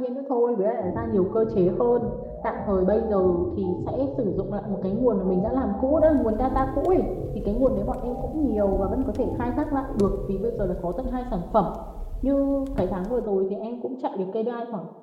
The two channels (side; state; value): both; identical; correlation 1.00